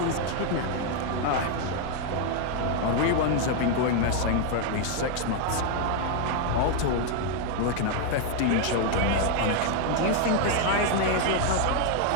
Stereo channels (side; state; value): both; different; correlation 0.00